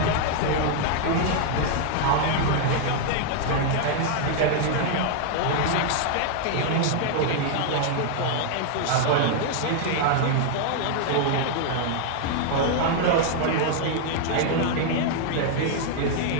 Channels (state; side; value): different; both; correlation 0.00